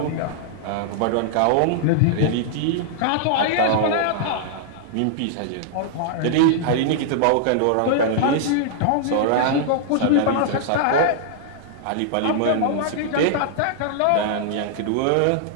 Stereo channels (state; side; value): different; both; correlation -0.01